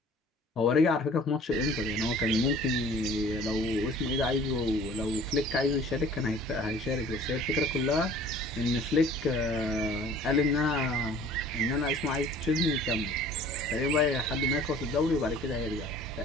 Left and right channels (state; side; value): normal; both; correlation 0.49